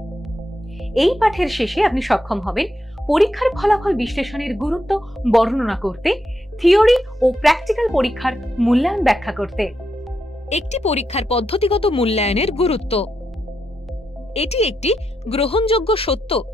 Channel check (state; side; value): normal; both; correlation 0.84